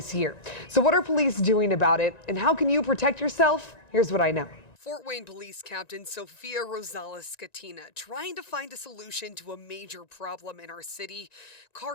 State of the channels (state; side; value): late; right; 1.9 ms